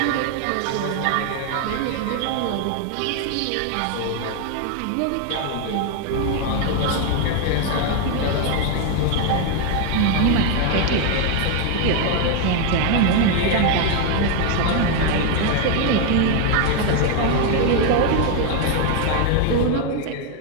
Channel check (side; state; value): both; different; correlation 0.01